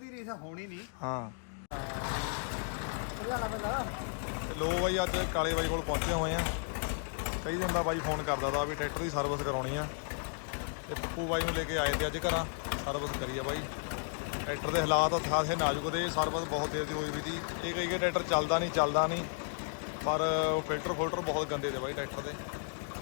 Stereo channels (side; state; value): right; silent; 55 dB below the other